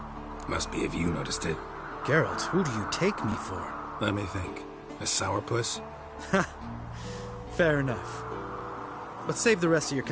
Must be if you noticed it. Geralt, who do you take me for? Let me think. A sourpuss? Fair enough. But save the rest of your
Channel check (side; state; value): both; identical; correlation 1.00